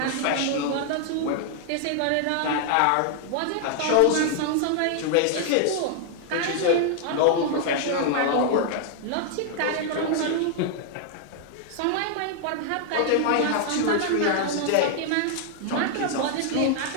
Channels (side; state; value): both; different; correlation 0.00